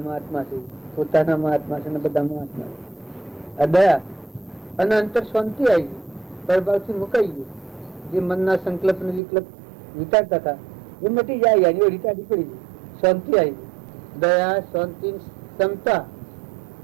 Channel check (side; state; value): left; drops out; at 9.2 s